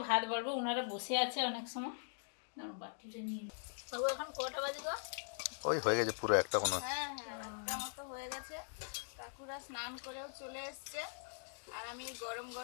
ভাত বাড়বো। ওনারা বসে আছে অনেক সময়। বাটিতে নিয়ে বাবু, এখন কটা বাজে গো? ওই হয়ে গেছে পুরো একটা কোনো। হ্যাঁ হ্যাঁ, একটা মতো হয়ে গেছে। কাকুরা স্নান করেও চলে এসছে, আর আমি গরম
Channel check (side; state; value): right; silent; digital silence